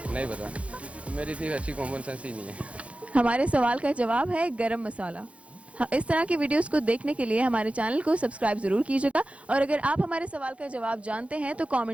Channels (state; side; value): late; left; 0.063 ms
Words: नहीं पता, मेरी थी अच्छी कॉमन सेंस ही नहीं है। हमारे सवाल का जवाब है गरम मसाला। हाँ, इस तरह की वीडियोस को देखने के लिए हमारे चैनल को सब्सक्राइब जरूर कीजिएगा और अगर आप हमारे सवाल का जवाब जानते हैं तो